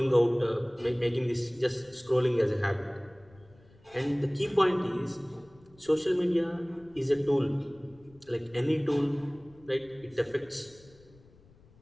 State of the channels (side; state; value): left; noise; rumble, 27 dB below the sound